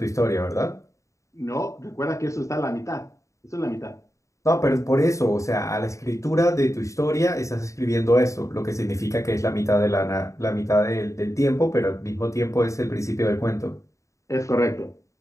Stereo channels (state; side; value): late; right; 0.15 ms